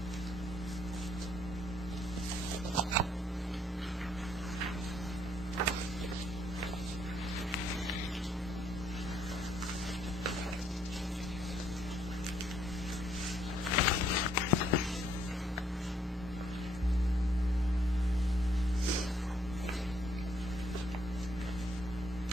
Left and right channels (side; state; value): both; normal; correlation 0.68